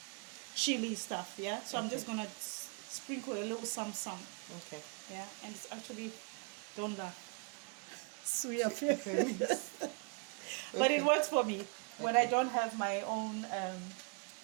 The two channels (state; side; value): quieter; left; 34.9 dB